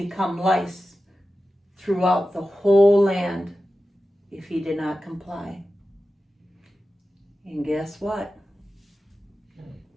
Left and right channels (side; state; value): both; normal; correlation 0.93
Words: lice throughout the whole land if he did not comply." And guess what?